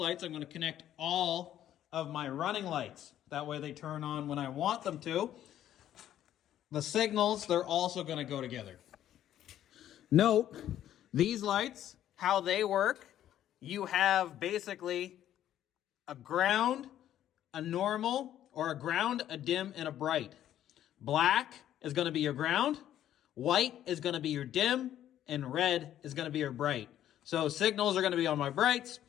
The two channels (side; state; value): right; quieter; 11.6 dB